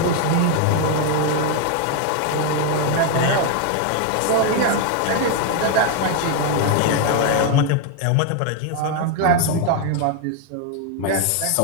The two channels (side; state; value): both; different; correlation 0.01